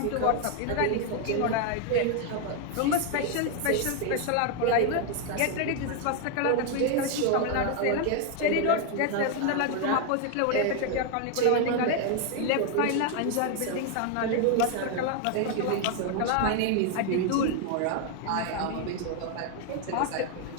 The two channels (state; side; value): different; both; correlation 0.01